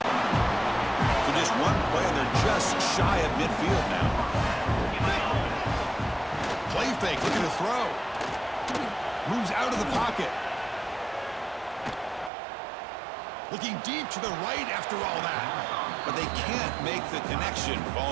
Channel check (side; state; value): left; drops out; at 12.3 s